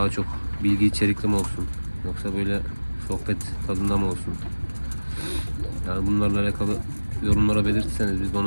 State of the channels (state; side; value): inverted; both; correlation -1.00